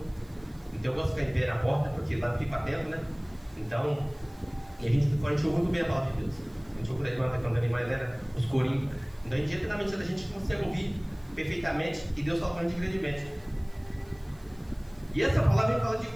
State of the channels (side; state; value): right; noise; hiss, 29 dB below the sound